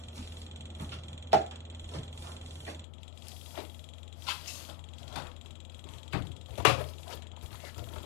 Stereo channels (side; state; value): right; drops out; at 2.9 s